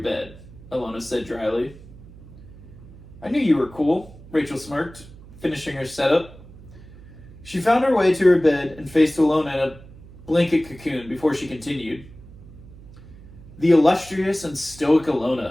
bed, Ilona said dryly. I knew you were cool, Rachel smirked, finishing her setup. She found her way to her bed and faced Ilona in a blanket cocoon before she continued. The illustrious and stoic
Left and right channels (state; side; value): noise; right; hum, 19 dB below the sound